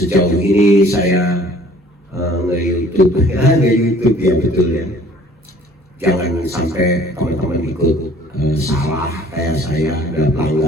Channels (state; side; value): normal; both; correlation 0.54